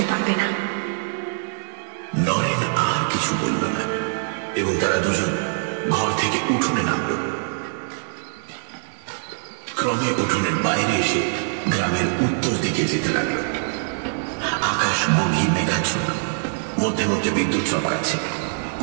পারবে না। নরেন আর কিছু বলল না এবং তারা দুজন ঘর থেকে উঠোনে নামল। ক্রমে উঠোনের বাইরে এসে গ্রামের উত্তর দিকে যেতে লাগলো। আকাশ গভীর মেঘাচ্ছন্ন, মধ্যে মধ্যে বিদ্যুৎ চমকাচ্ছে।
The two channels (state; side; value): silent; left; 63 dB below the other